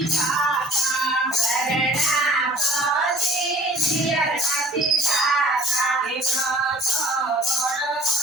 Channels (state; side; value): normal; both; correlation 0.49